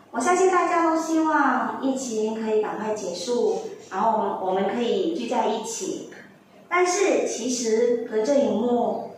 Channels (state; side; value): identical; both; correlation 1.00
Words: 我相信大家都希望疫情可以赶快结束，然后我们可以聚在一起。但是其实隔着荧幕，